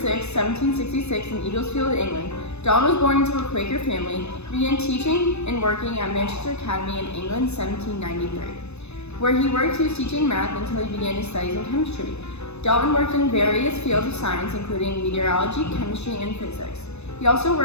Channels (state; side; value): late; right; 0.81 ms